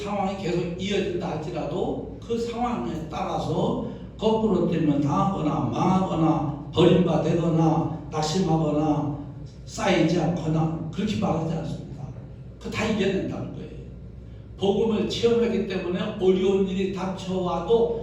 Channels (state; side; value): identical; both; correlation 1.00